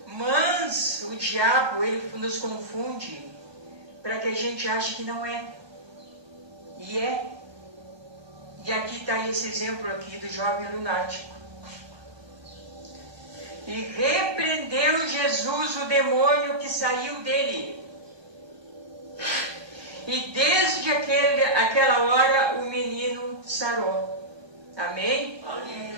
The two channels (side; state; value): left; late; 1.2 ms